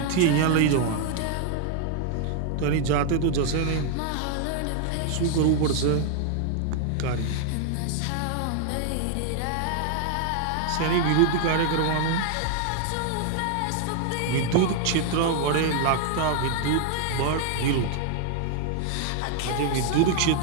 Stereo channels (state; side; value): different; both; correlation 0.00